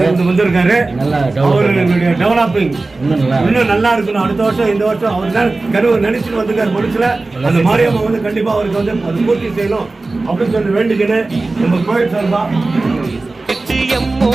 வந்திருக்காரு. அவர்களுடைய டெவலப்பிங் இன்னும் நல்லா இருக்கணும். அடுத்த வருஷம் இந்த வருஷம் அவர் தான் கருவு நினைச்சுட்டு வந்திருக்காரு. மனுஷல அந்த மாரியம்மா வந்து கண்டிப்பா அவருக்கு வந்து அது பூர்த்தி செய்யணும் அப்படின்னு சொல்லி வேண்டிக்கின்னு நம்ம கோயில் சார்பா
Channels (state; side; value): quieter; left; 3.3 dB